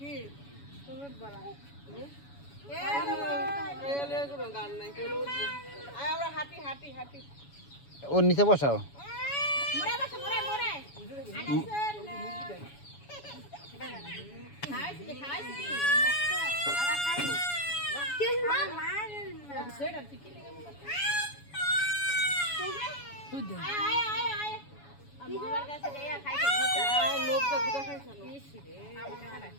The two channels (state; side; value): late; right; 7.1 ms